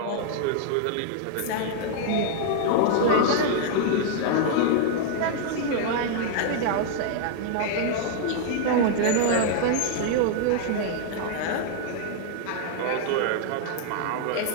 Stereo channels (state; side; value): different; both; correlation -0.01